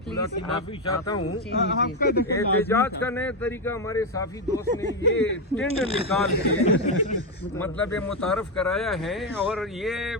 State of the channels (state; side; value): normal; both; correlation 0.08